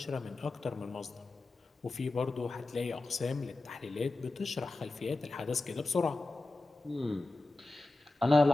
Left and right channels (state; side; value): quieter; right; 3.1 dB